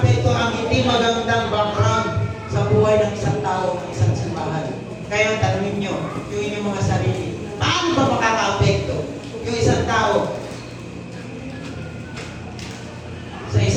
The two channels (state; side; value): identical; both; correlation 1.00